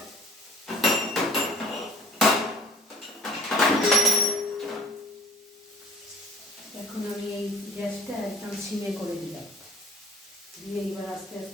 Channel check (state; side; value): normal; both; correlation 0.47